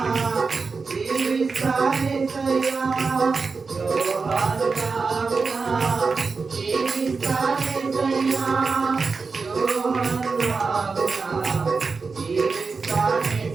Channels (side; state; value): left; quieter; 4.6 dB